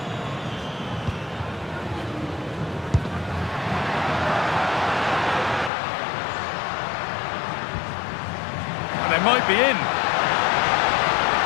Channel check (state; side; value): drops out; right; at 5.7 s